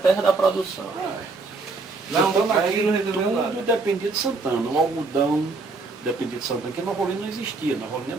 da produção. Santana aqui tudo dependia de Santana. O algodão dependia de Santana, porque Nova Olinda não existia. Nova Olinda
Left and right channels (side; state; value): left; quieter; 3.8 dB